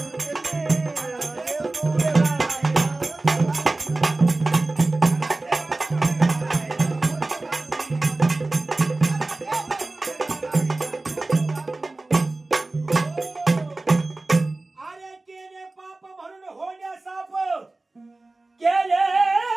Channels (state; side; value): quieter; left; 3.1 dB